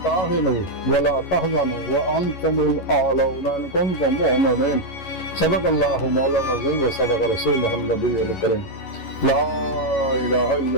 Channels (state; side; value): late; right; 11 ms